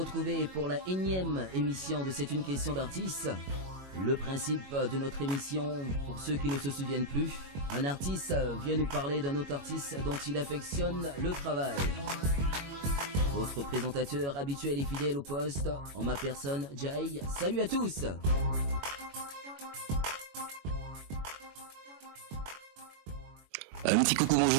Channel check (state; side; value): late; left; 21 ms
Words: pour la énième émission de C'est une question d'artiste. Le principe de notre émission, pour ceux qui ne se souviennent plus, un artiste vient nous parler d'un autre artiste dont il affectionne le travail. Votre présentateur habituel et fidèle au poste, en ma personne, Jay. Salut à tous! Un petit coucou